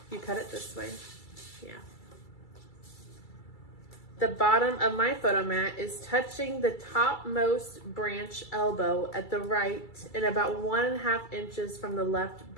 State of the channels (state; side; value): late; right; 2.3 ms